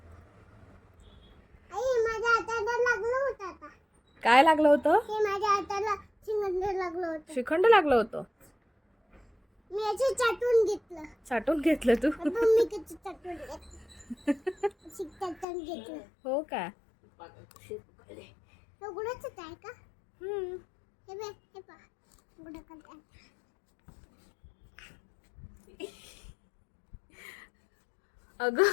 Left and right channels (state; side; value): drops out; right; at 15.5 s